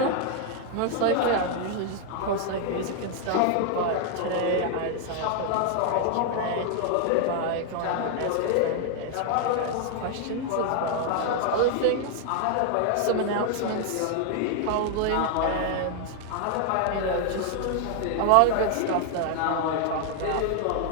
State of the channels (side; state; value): both; different; correlation 0.00